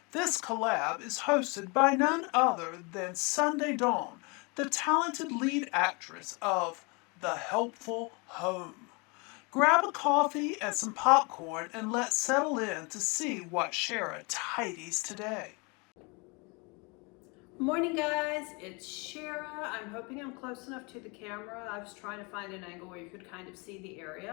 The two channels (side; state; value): right; quieter; 30.0 dB